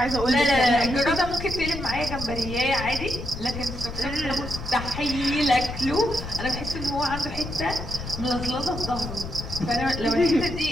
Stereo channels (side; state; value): left; noise; rumble, 8 dB below the sound